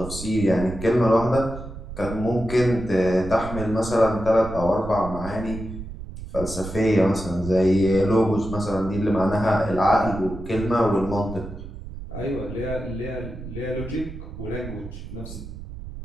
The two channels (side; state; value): right; noise; rumble, 11 dB below the sound